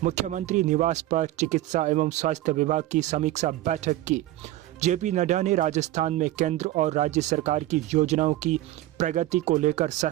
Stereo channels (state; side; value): quieter; left; 15.2 dB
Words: मुख्यमंत्री निवास पर चिकित्सा एवं स्वास्थ्य विभाग की समीक्षा बैठक की। जेपी नड्डा ने राजस्थान में केंद्र और राज्य सरकार की योजनाओं की प्रगति को लेकर